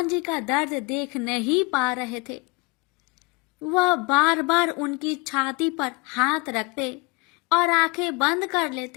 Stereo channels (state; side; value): quieter; right; 28.4 dB